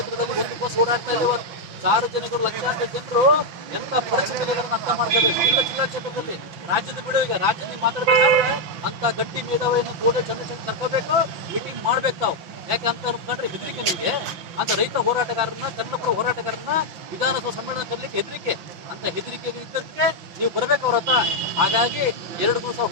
ಒಂದು ಬಸ್ ಓಡಾಡ್ತಾ ಇಲ್ಲ. ಇವತ್ತು ಸಾರ್ವಜನಿಕರು ಲಕ್ಷಾಂತರ ಜನರು ಎಂತ ಪರಿಸ್ಥಿತಿಗಳನ್ನು ಅರ್ಥ ಮಾಡ್ಕೋಬೇಕು. ಇಲ್ಲ ಜಿಲ್ಲಾ ಕ್ಷೇತ್ರದಲ್ಲಿ ರಾಜ್ಯದ ಬಿಡು, ಈಗ ರಾಜ್ಯದಲ್ಲಿ ಮಾತಾಡ್ಬೇಕಾದ್ರೆ ಅಂತ ಗಟ್ಟಿ ಮೇಧಾವಿಯನ್ನು ಗೋಡೆ ಚಂದ್ರಶೇಖರ್ ಕರ್ಕೋಬೇಕು, ಮೀಟಿಂಗ್ ಮಾಡ್ಬೇಕು ತಾವು. ಯಾಕೆ ಅಂತ ಅನ್ಕೊಂಡ್ರೆ ಹೆದರಿಕೆ ನಿಮಗೆ. ಅಂತ ರೈತ ಹೋರಾಟಗಾರರನ್ನ ಕನ್ನಡಪರ ಹೋರಾಟಗಾರರನ್ನ ವಿಧಾನಸಭಾ ಸಮ್ಮೇಳನ ಕರಲಿಕ್ಕೆ ಹೆದರಿಕೆ. ಅಂತ ಹೆದರಿಕೆಗೆ ಇದ್ದಕ್ಕೆ ನೀವು ಬರ್ಬೇಕು ಅವ್ರ ಹತ್ರ. ಹಾಗಾಗಿ 2 ದಿವಸ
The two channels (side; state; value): left; late; 5.9 ms